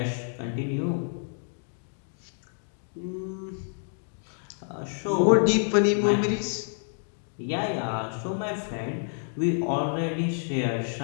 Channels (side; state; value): right; silent; digital silence